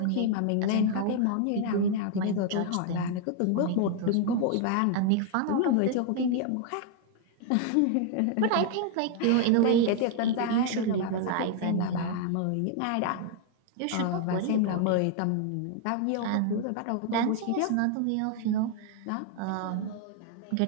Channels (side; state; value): both; different; correlation 0.00